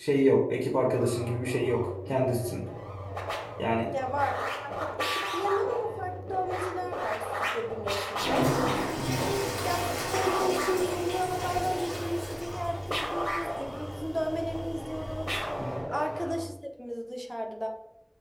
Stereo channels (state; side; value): identical; both; correlation 1.00